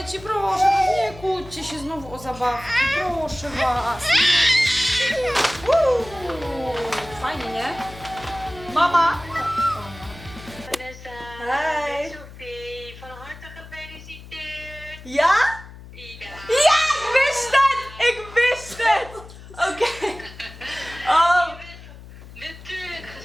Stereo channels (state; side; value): noise; left; hum, 17 dB below the sound